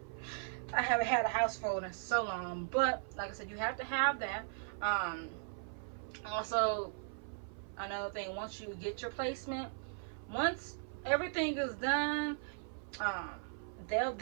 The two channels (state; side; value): silent; left; 52 dB below the other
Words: I haven't had a house phone in so long. But like I said, you have to have that. Also, another thing, once you get your placement, once everything is done, um, they'll